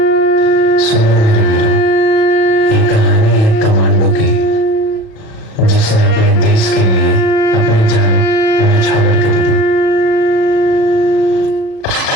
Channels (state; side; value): late; right; 37 ms